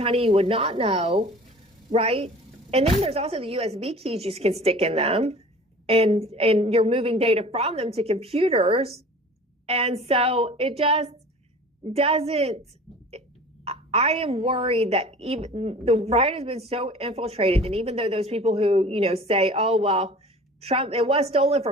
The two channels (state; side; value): normal; both; correlation 0.43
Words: you would not know, right? And then there's also the USB keys you can stick in them, and you're moving data from them to computers. And so it just doesn't. I am worried that even the right has been so infiltrated, and even though those people who say, oh well, Trump, it was stolen